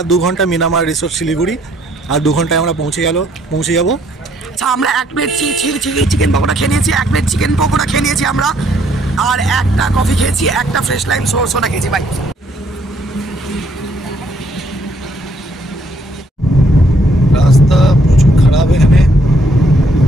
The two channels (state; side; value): normal; both; correlation 0.67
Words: 2 ঘন্টা মিরামার রিসোর্ট শিলিগুড়ি, আর 2 ঘন্টায় আমরা পৌঁছে যাব। আচ্ছা, আমরা 1 প্লেট চিকেন পকোড়া খেয়ে নিয়েছি, 1 প্লেট চিকেন পকোড়া খেয়ে নিয়েছি আমরা, আর একটা কফি খেয়েছি, একটা ফ্রেশ লাইম সোডা খেয়েছি ভাই। রাস্তা প্রচুর খারাপ এখানে।